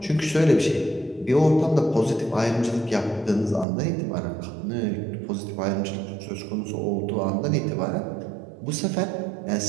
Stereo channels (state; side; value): drops out; left; at 3.7 s